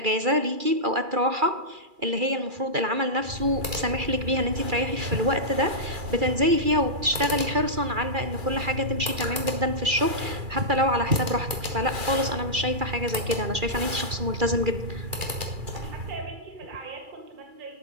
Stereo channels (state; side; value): late; left; 2.3 ms